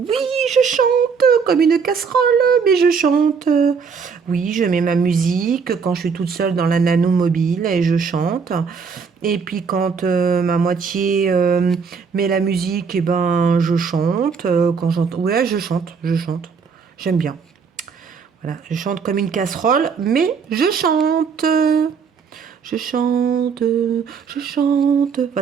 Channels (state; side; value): quieter; left; 5.8 dB